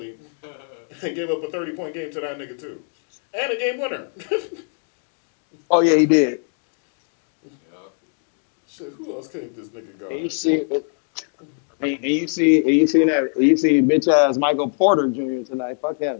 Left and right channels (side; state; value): right; silent; 55 dB below the other